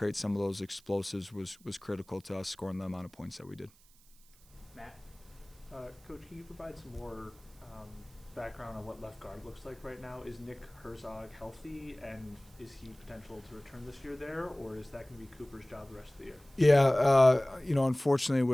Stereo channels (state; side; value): noise; right; hiss, 27 dB below the sound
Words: some of those explosives was critical to us scoring the amount of points that we did. Matt? Coach, can you provide some more background on what left guard looks like right now? Is Nick Herzog healthy, and is he potential to return this year there, or is that going to be Cooper's job the rest of the year? Yeah, unfortunately